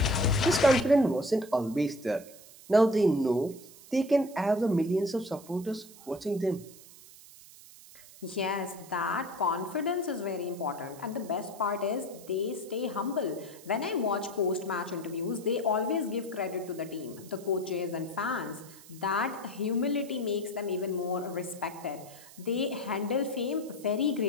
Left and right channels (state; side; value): noise; right; hiss, 20 dB below the sound